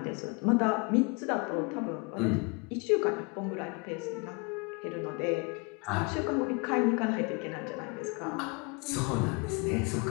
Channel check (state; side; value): quieter; right; 30.4 dB